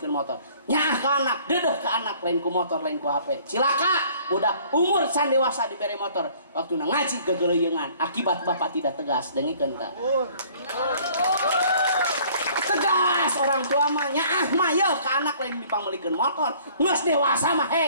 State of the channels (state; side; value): inverted; both; correlation -0.55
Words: motor. Nyah ke anak, dedeh ke anak, lain ku motor, lain ku HP. Cilaka, udah umur can dewasa diberi motor. Waktu ngaji gegeleuyeungan, akibat bapak tidak tegas, dengikeun tah. Tegas orang tua mah nyaah mah yeuh ke anak lain dipanggilkan motor. Geus dewasa mah